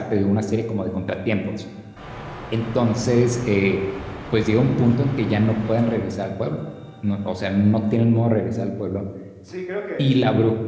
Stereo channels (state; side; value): identical; both; correlation 1.00